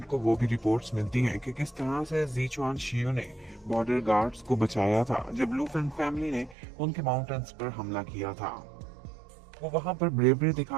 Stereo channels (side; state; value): left; drops out; at 6.6 s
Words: को वो भी रिपोर्ट्स मिलती हैं कि किस तरह से ज़ीचुआन शियू ने बॉर्डर गार्ड्स को बचाया था जब लू फेंग फैमिली ने उनके माउंटेन्स पर हमला किया था। वो वहां पर ब्रेवरी